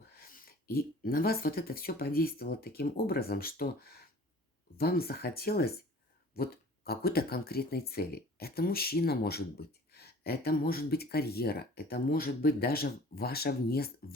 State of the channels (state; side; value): normal; both; correlation 0.47